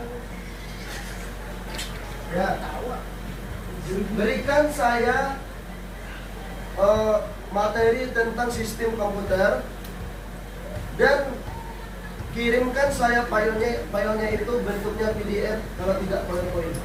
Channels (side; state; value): both; identical; correlation 1.00